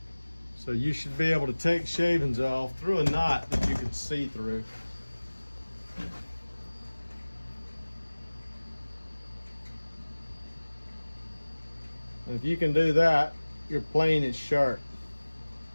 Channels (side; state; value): both; inverted; correlation -1.00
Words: So you should be able to take shavings off through a knot that you can see through. And if you can do that, your plane is sharp.